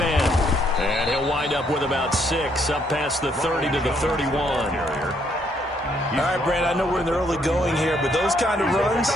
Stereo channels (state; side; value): normal; both; correlation 0.70